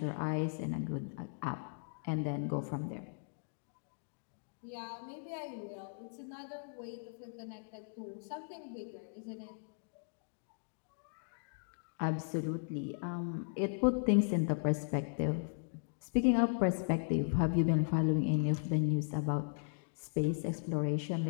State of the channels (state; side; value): silent; right; digital silence